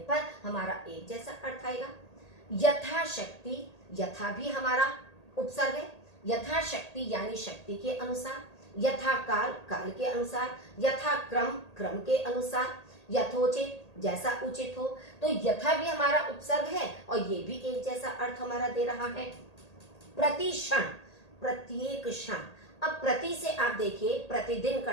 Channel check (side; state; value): right; late; 1.8 ms